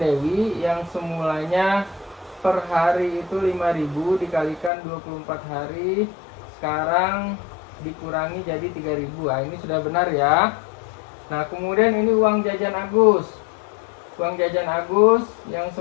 yang semulanya per hari itu 5.000 dikalikan 24 hari, sekarang dikurangi jadi 3.000. Nah, ini sudah benar ya. Nah, kemudian ini uang jajan Agus. Uang jajan Agus yang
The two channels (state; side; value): drops out; right; at 4.7 s